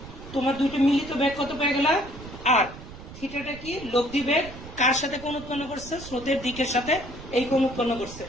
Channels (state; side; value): noise; right; rumble, 14 dB below the sound